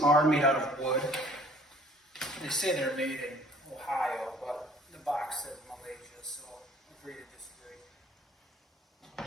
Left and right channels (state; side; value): normal; both; correlation 0.54